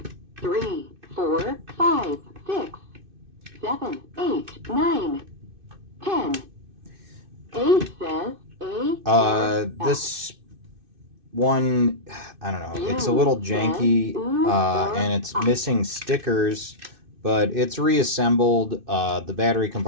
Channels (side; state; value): left; late; 2.6 ms